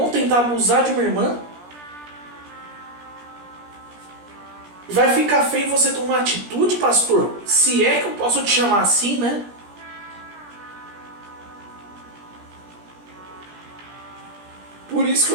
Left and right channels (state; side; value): late; left; 17 ms